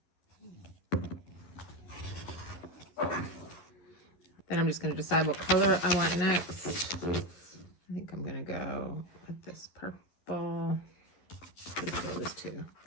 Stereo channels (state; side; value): late; right; 11 ms